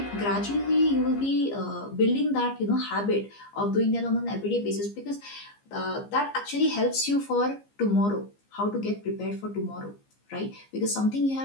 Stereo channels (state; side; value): late; right; 15 ms